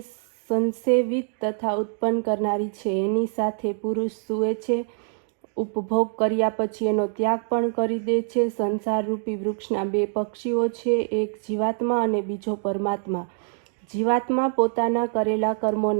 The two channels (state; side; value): silent; left; digital silence